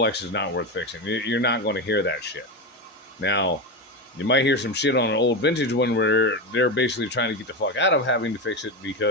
is not worth fixing. You're not going to hear that shit. Now, you might hear some shit on an old vintage one where they're basically trying to get the fuck out of having to fix it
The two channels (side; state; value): both; normal; correlation 0.16